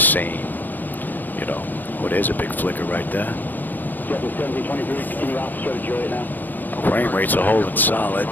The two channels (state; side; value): late; right; 0.090 ms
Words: same, you know. Oh, there's a big flicker right there. Frame rates are holding solid.